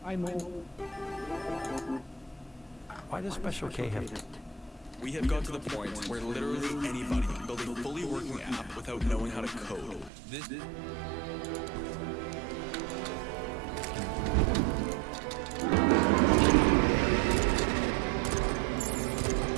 Why does Special K have... We have got to the point where literally anybody can build a fully working app without knowing how to code. This...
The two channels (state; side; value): drops out; left; at 10.1 s